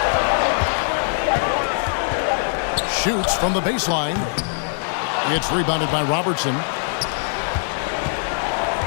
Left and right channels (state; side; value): silent; right; 59 dB below the other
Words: Shoots from the baseline. It's rebounded by Robertson.